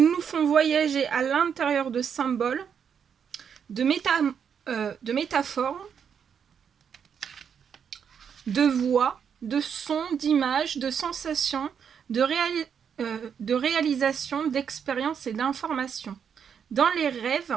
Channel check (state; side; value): quieter; left; 7.4 dB